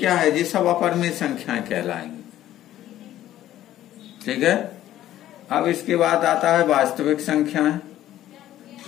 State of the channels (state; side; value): quieter; right; 13.1 dB